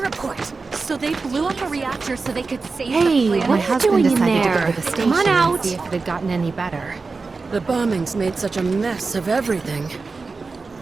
So they blew up a reactor so they could save Hey, the planet? what are you doing in there? Come on out. See if it had gotten any better. The bombings made such a mess of everything.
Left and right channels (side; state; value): left; quieter; 4.2 dB